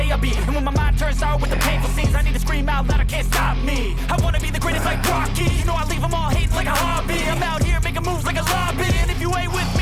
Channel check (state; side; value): identical; both; correlation 1.00